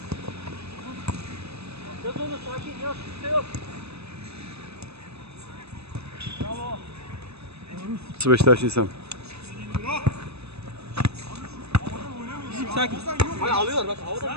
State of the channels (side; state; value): left; late; 0.79 ms